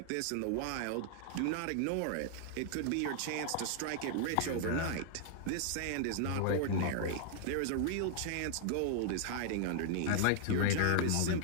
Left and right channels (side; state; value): both; different; correlation 0.00